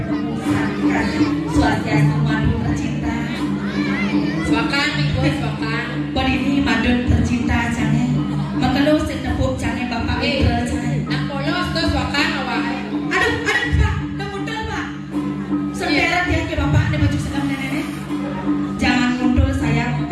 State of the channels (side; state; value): both; identical; correlation 1.00